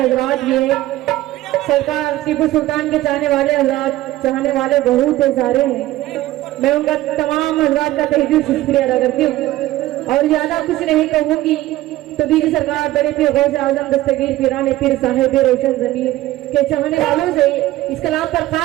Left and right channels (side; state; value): left; quieter; 16.1 dB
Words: भी हैं। सरकार टीपू सुल्तान के चाहने वाले हजरात, चाहने वाले बहुत सारे हैं। मैं उनका तमाम हजरात का तहे दिल से शुक्रिया अदा करती हूँ और ज्यादा कुछ नहीं कहूंगी। तो बीजी सरकार बड़े पीर गौसे आजम दस्तगीर पीराने पीर साहिब रोशन जमीर के चाहने वालों से इस कलाम पर